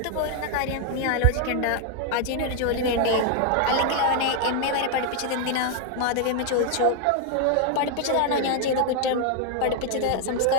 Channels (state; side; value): different; both; correlation 0.00